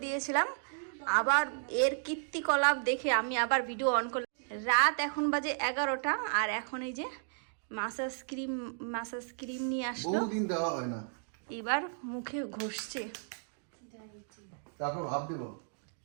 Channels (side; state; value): left; silent; digital silence